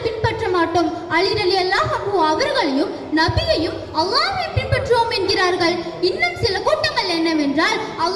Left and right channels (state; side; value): identical; both; correlation 1.00